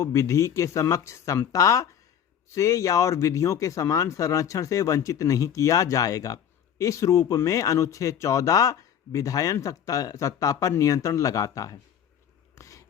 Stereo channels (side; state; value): right; quieter; 8.9 dB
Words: विधि के समक्ष समता से या और विधियों के समान संरक्षण से वंचित नहीं किया जाएगा। इस रूप में अनुच्छेद 14 विधायन सत्ता पर नियंत्रण लगाता है।